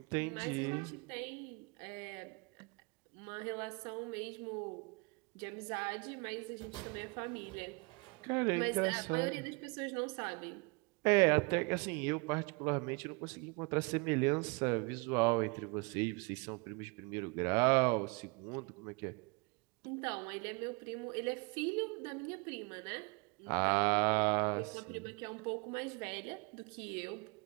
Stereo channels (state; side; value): quieter; left; 30.8 dB